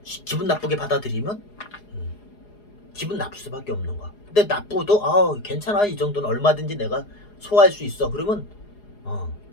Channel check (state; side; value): late; right; 4.8 ms